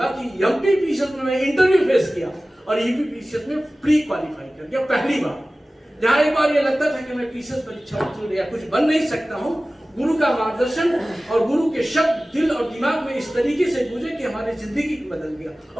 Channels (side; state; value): both; normal; correlation 0.97